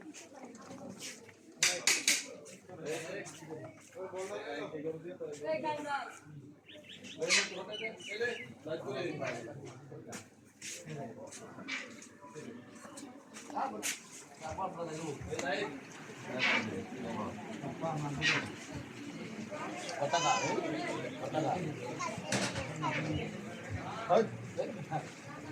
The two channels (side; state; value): both; identical; correlation 1.00